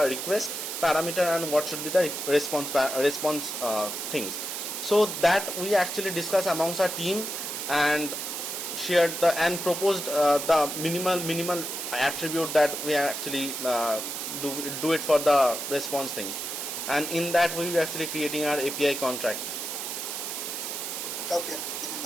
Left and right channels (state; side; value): noise; right; hiss, 5 dB below the sound